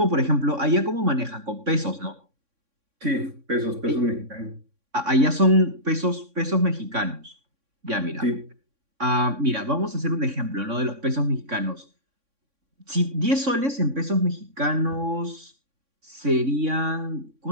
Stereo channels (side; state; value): left; late; 3.6 ms